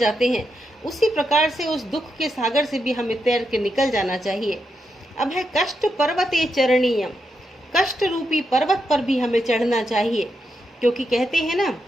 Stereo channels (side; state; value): both; normal; correlation 0.84